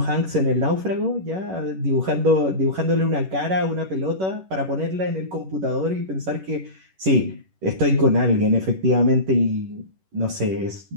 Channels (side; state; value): left; late; 11 ms